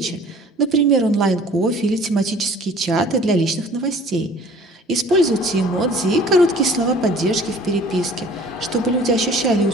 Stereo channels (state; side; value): normal; both; correlation 0.49